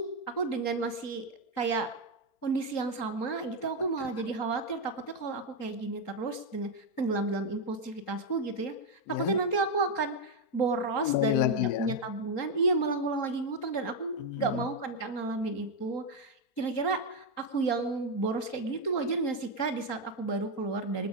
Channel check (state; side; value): late; right; 3.8 ms